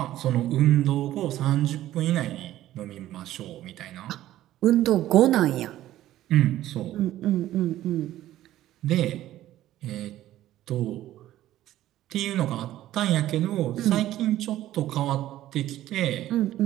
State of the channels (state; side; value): quieter; left; 13.9 dB